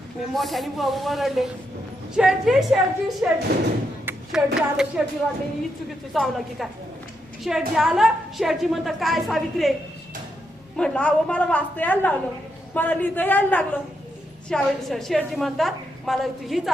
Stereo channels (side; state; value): both; normal; correlation 0.81